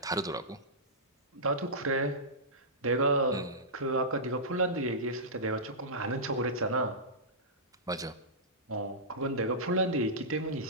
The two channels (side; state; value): both; normal; correlation -0.16